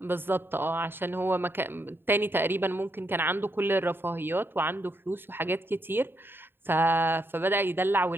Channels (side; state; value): left; late; 0.10 ms